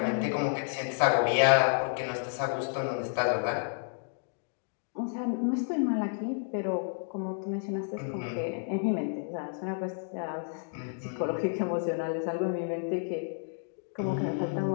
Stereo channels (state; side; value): silent; right; digital silence